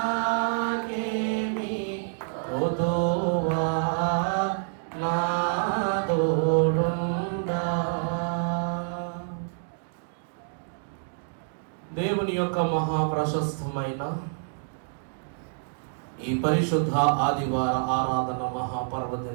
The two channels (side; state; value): left; silent; digital silence